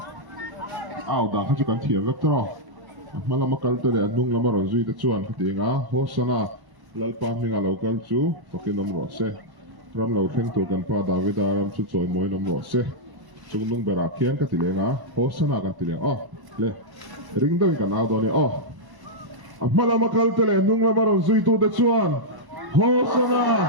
out da kha chu kan thiam vek tro mala makal to le nung la maro zui te chuan kha ti nga hosana lalpa minga local chu pakinom ro se ram lo theng tu kan pa David ram chu choi moi nom ro se chung nung bera khian ka ti le nga hosana kan ti le le ring do kan out do ni mala makal to le nung la maro zui tu te chuan hosana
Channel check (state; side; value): late; left; 1.1 ms